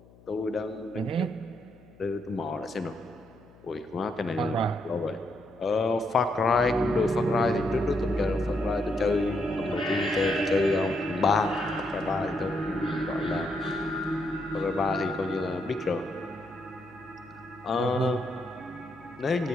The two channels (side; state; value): left; noise; hum, 25 dB below the sound